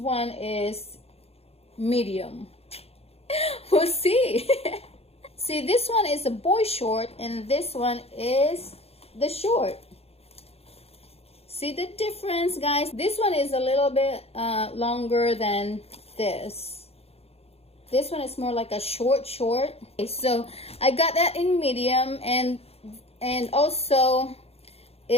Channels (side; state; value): right; late; 0.29 ms